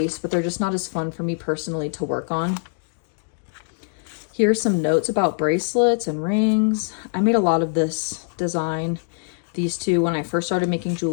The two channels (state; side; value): silent; right; digital silence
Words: but they're just not as fun for me personally to work on. Here's some notes about bracelets and rings. I made a lot of this design, these two, when I first started making